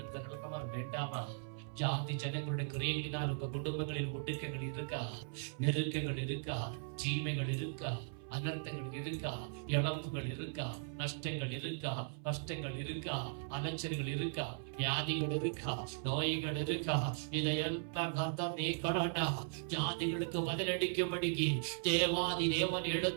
வேண்டாமா? ஜாதி ஜனங்களுடைய கிரியையினால் உங்க குடும்பங்களில் ஒடுக்கங்கள் இருக்கா? நெருக்கங்கள் இருக்கா? தீமைகள் இருக்கா? அனர்த்தங்கள் இருக்கா? இழப்புகள் இருக்கா? நஷ்டங்கள் இருக்கா? கஷ்டங்கள் இருக்கா? அலைச்சல்கள் இருக்கா? வியாதிகள் இருக்கா? நோய்கள் இருக்கா? இதையெல்லாம் கர்த்தர் நீக்கணும்னா ஜாதிகளுக்கு பதிலளிக்கும்படி தேவாதி தேவன்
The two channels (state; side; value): silent; left; 52 dB below the other